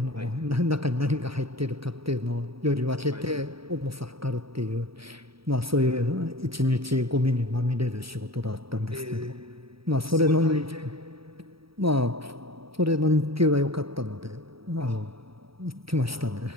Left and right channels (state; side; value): late; left; 0.75 ms